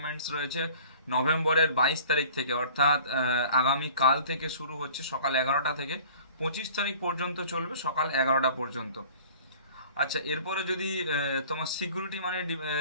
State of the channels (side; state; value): both; inverted; correlation -0.47